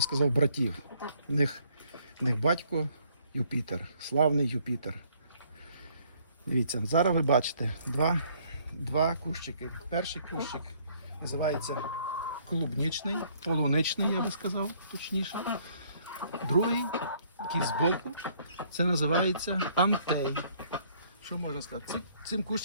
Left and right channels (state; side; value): inverted; both; correlation -0.63